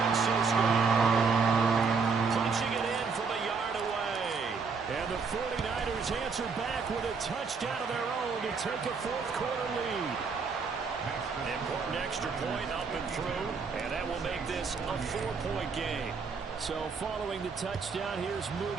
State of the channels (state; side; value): quieter; left; 5.1 dB